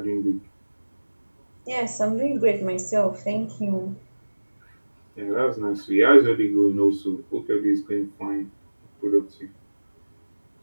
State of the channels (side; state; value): both; inverted; correlation -1.00